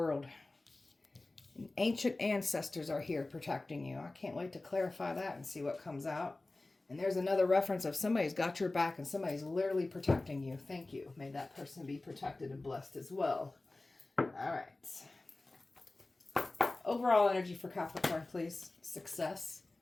And ancient ancestors are here protecting you. I can't wait to clarify that and see what comes out. And there's another reference of somebody's got your back and somebody's literally protecting you. Thank you. May that person be protected and blessed as well. All right. Overall energy for Capricorn, please. Success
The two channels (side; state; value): right; quieter; 3.0 dB